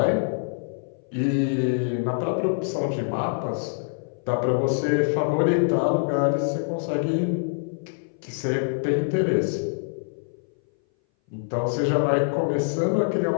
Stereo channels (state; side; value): silent; right; 59 dB below the other